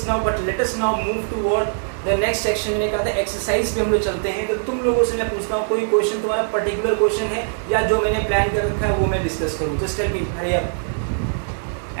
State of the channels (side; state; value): left; silent; digital silence